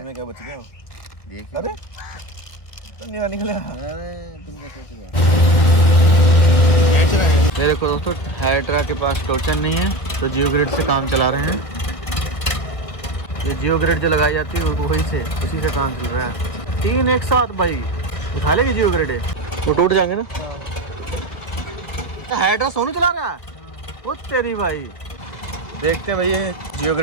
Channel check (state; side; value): late; right; 1.4 ms